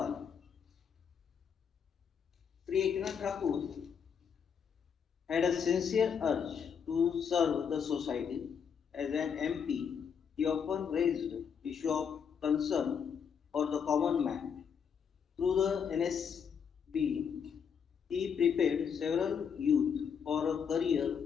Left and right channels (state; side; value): quieter; right; 7.1 dB